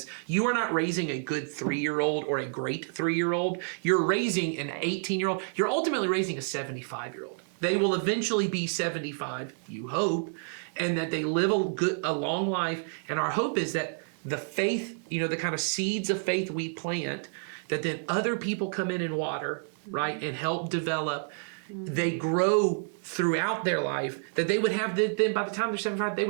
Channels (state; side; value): silent; left; 58 dB below the other